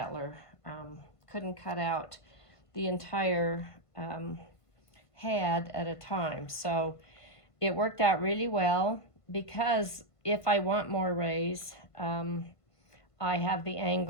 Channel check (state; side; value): late; right; 1.5 ms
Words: couldn't cut out the entire head at a time. So it worked out really well because if I want more rays, I have the